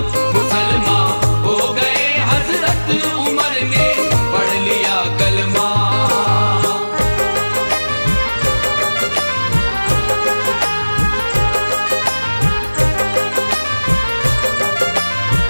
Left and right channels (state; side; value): inverted; both; correlation -1.00